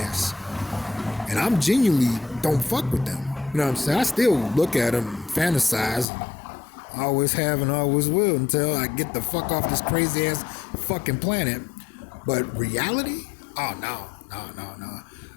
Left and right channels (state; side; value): drops out; right; at 6.1 s